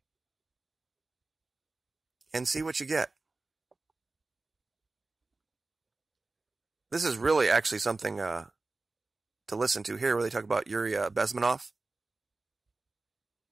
And see what you get. This is really actually something to listen to here, where they talk about Yuri Bezmenov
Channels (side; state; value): left; quieter; 3.4 dB